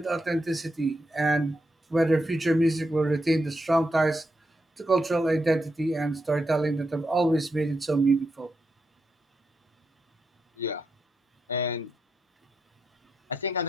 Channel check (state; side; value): normal; both; correlation 0.84